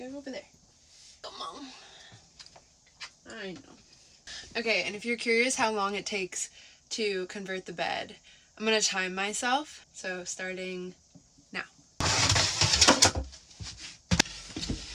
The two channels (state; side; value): identical; both; correlation 1.00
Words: go over there. Come on. I know. Okay, and if you're curious how long it takes to convert the bed, I'm gonna time myself. So starting now.